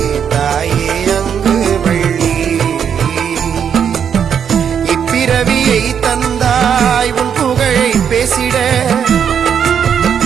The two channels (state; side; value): quieter; left; 7.9 dB